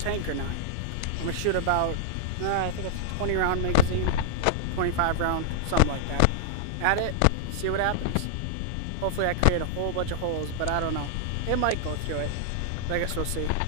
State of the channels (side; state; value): both; different; correlation -0.01